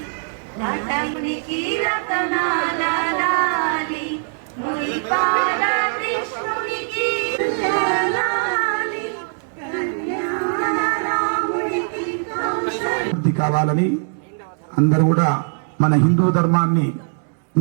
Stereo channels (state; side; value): silent; left; 65 dB below the other